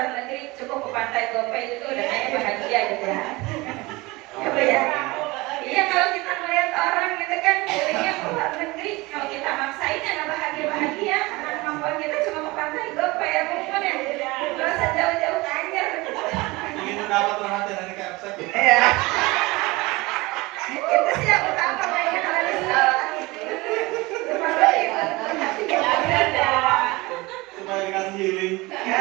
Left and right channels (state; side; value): quieter; left; 22.5 dB